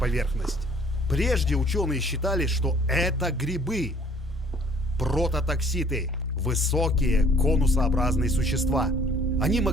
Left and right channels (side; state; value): both; normal; correlation 0.57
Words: Прежде ученые считали, что это грибы. Прототокситы. Высокие конусообразные существа. Они